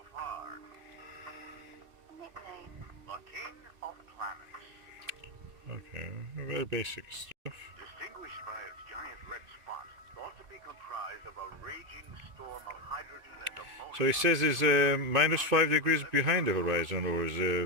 far. Nickname: the King of Planets. Okay, very basic stuff. Distinguished by its giant red spot, thought to be comprised of a raging storm of hydrogen and ammonia. So it says it's minus 5 degrees behind the horizon, or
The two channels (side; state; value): left; late; 2.5 ms